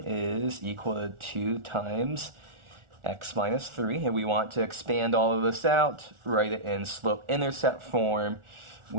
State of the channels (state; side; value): late; left; 1.4 ms